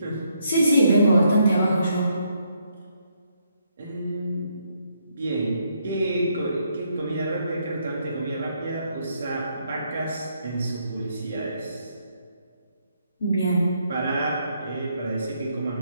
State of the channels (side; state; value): both; inverted; correlation -0.74